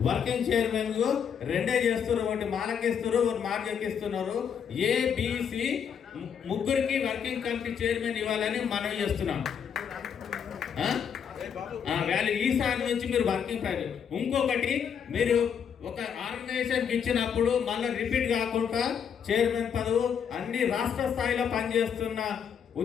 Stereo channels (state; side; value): quieter; right; 7.6 dB